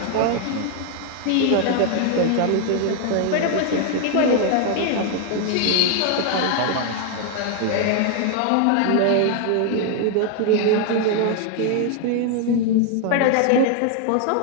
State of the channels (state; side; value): different; both; correlation 0.00